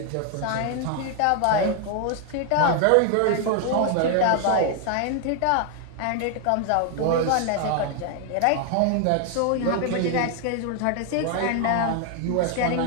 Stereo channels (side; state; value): both; different; correlation 0.00